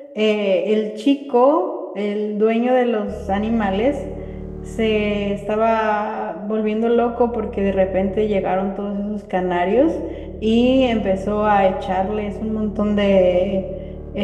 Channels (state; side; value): identical; both; correlation 1.00